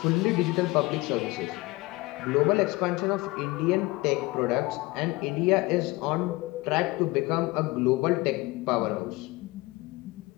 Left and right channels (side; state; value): right; quieter; 22.0 dB